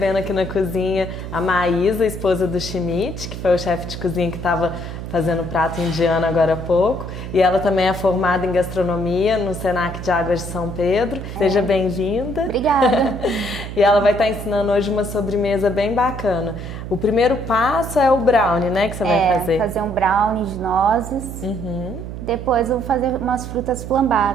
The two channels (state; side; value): noise; right; hum, 8 dB below the sound